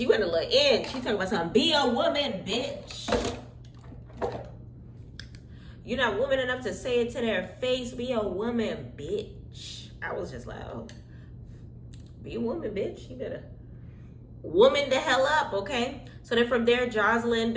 a little in. She talking about something. Be a woman, bitch. You're not woman enough to say it to their face. Be a woman, bitch. I was just like, oh, be a woman, bitch. You better woman the hell up, okay? So then from there, Joseline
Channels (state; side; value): identical; both; correlation 1.00